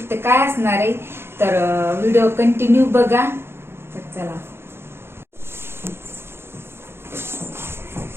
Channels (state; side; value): late; left; 0.12 ms